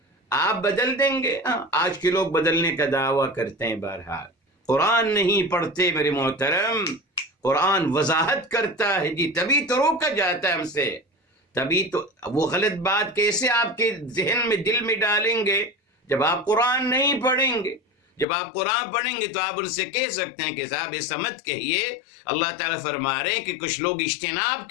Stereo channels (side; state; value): right; drops out; at 18.2 s